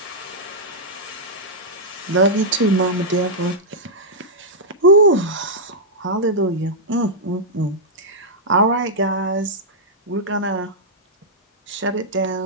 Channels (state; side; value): normal; both; correlation -0.09